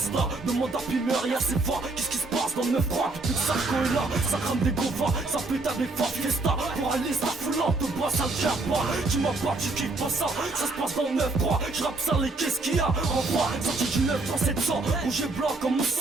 là, demande à Pimer, y'a c'est fort. Qu'est-ce qui se passe dans le 9-3? Depuis que Sarko est là, ça crame des govas, ça pète à des forts fiesta. Pour aller ça foulante, te bois, ça le tient pas. Dis-moi pas, tu kiffes pas ça, ça se passe dans le 9-3. Je rappe ça, les qu'est-ce qu'il y a? En voix, sorti du 9-3 700, rouge et blanc comme mon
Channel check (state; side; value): quieter; left; 3.3 dB